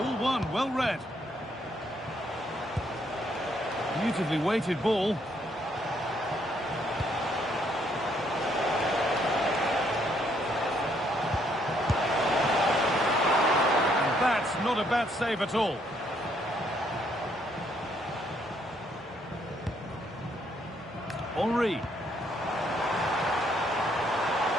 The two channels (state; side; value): normal; both; correlation 0.70